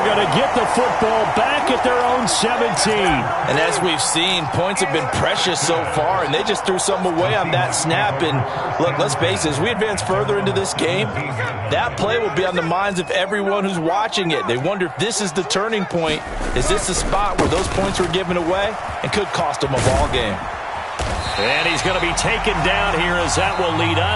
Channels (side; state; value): both; identical; correlation 1.00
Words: going to get the football back at their own 17. And as we've seen, points have been precious so far, and they just threw some away on that snap. And look, let's face it, as we advance further into this game, that play will be on the minds of everyone who's watching it. They wonder if this is the turning point. Is this the spot where those points were given away and could cost them a ball game? And he's going to be taken down here as that will lead